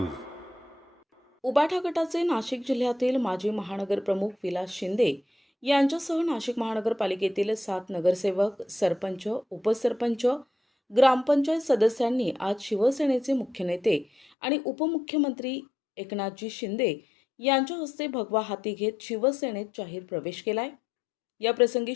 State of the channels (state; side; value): drops out; right; at 14.2 s